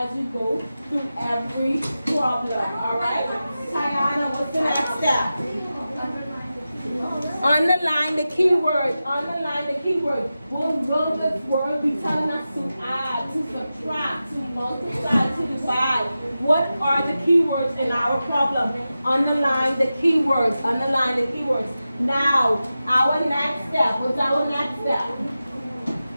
you go through every problem. All right? Tiana, what's the next step? Underline the keyword. Underline the keyword. What will this word be telling us to add, to subtract, to multiply, to divide? What are the keywords in our problem? Underline the keywords. Underline the keywords. Now, our next step. What's our next step?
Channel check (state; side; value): inverted; both; correlation -0.93